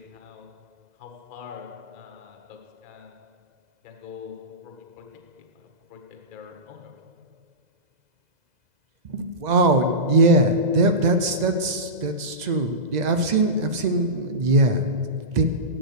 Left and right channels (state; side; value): late; left; 2.0 ms